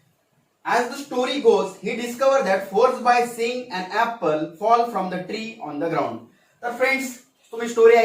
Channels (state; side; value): identical; both; correlation 1.00